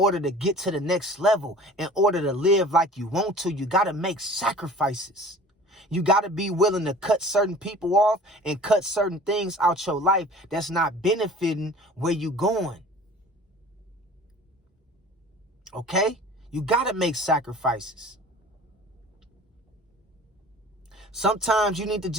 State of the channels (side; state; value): both; normal; correlation 0.44